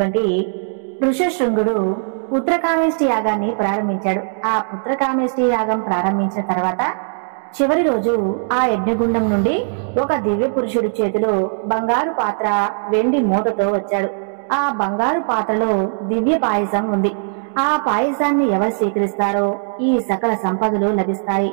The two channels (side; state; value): left; silent; digital silence